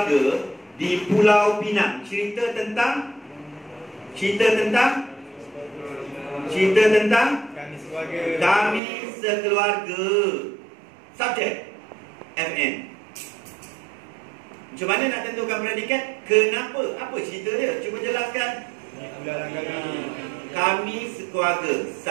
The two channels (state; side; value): drops out; left; at 8.8 s